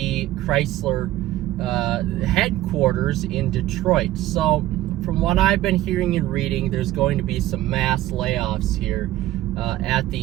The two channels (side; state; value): left; quieter; 15.1 dB